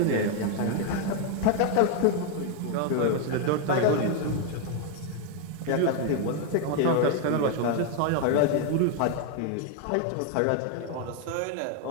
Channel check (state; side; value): different; both; correlation 0.01